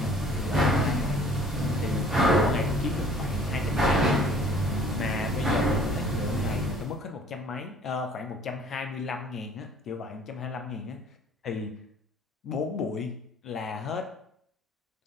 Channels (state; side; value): normal; both; correlation 0.53